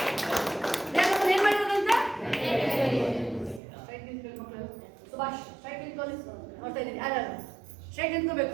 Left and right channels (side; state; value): left; drops out; at 3.6 s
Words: ದೇವ್ರು ಏನ್ ಮಾಡಿರೋದಂತೆ? ಸುಭಾಷ್ ಸ್ಟ್ರೈಟ್ ನಿಂತ್ಕೊಳ್ಳಿ. ನೋಡ್ತಾ ಇದ್ದೀನಿ ಯಾರು ಸ್ಟ್ರೈಟ್